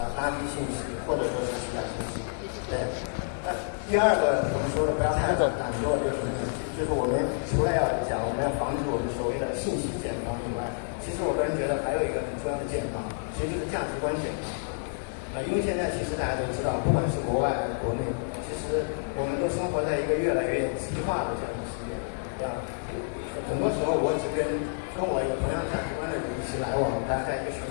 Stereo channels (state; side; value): silent; right; 59 dB below the other